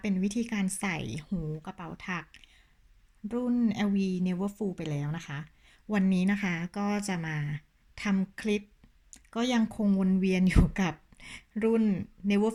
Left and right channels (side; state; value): both; identical; correlation 1.00